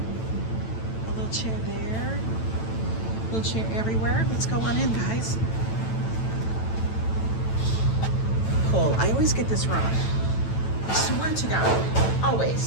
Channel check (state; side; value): late; right; 9.0 ms